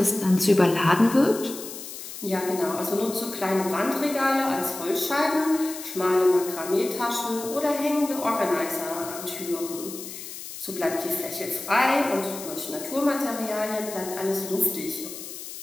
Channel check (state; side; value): noise; left; hiss, 11 dB below the sound